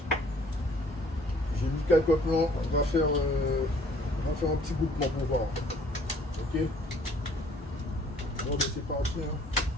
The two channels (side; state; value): both; normal; correlation 0.57